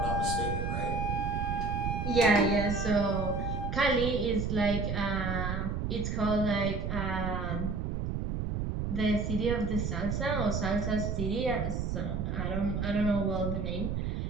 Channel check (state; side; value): noise; right; rumble, 2 dB below the sound